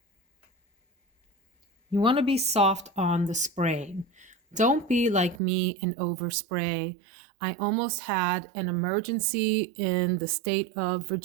you want to be soft on the spraying. Don't be like me and overspray. I almost had an emergency in the state of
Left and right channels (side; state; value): left; drops out; at 5.4 s